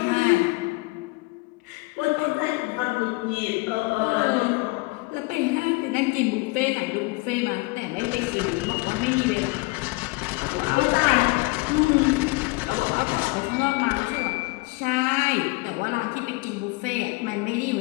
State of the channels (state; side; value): quieter; right; 24.7 dB